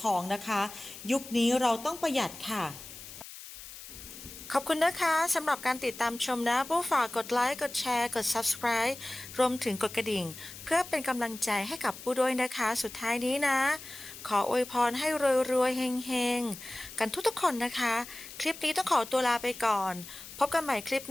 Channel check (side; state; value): left; noise; hiss, 14 dB below the sound